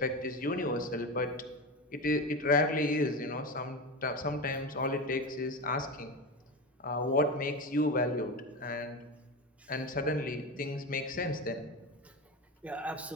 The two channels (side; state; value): both; normal; correlation 0.21